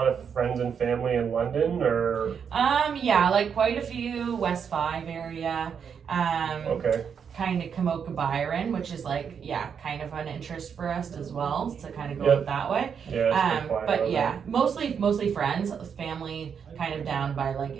of friends and family in London, or? Yeah, like quite a few West 5 area. Okay. Kind of Kamoka Byron, which is like, kind of an interest for us as well to kind of go that way. Yeah, but yeah, mostly friends, family kind of down by like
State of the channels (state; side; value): quieter; left; 7.1 dB